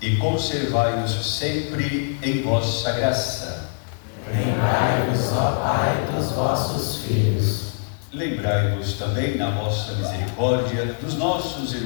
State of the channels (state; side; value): silent; right; digital silence